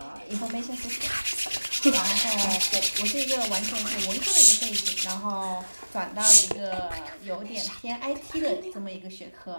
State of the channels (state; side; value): inverted; both; correlation -1.00